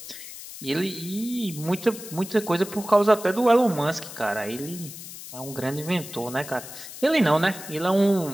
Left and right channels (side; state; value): left; noise; hiss, 13 dB below the sound